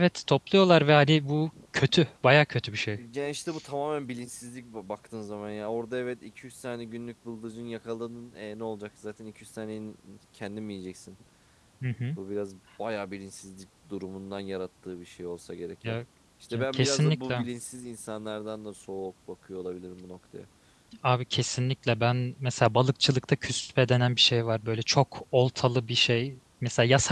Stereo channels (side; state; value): both; identical; correlation 1.00